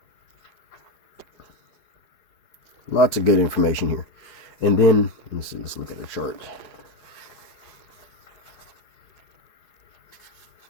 Lots of good information here. And then, let's look at the chart.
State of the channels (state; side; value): late; right; 4.8 ms